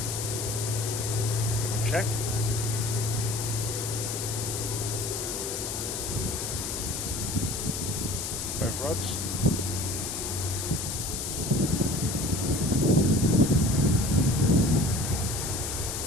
Double check. Both rods.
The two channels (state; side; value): noise; left; hiss, 4 dB below the sound